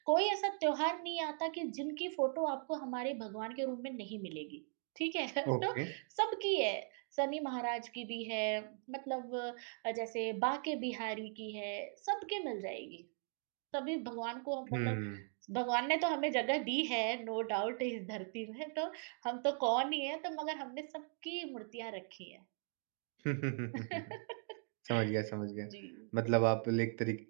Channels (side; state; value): left; silent; 52 dB below the other